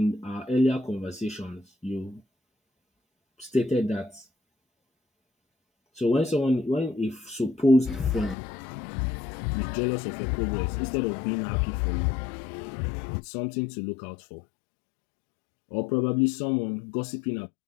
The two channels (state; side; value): drops out; right; at 8.3 s